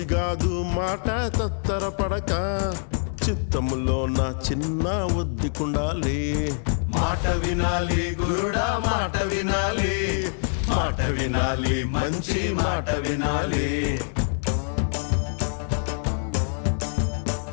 కాదు మాట తత్తర పడక చిత్తములో నా చిన్న ఒద్దికుండాలి మాట వినాలి గురుడా మాట వినాలి మాట వినాలి మంచి మాట వినాలి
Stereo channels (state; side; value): silent; right; 62 dB below the other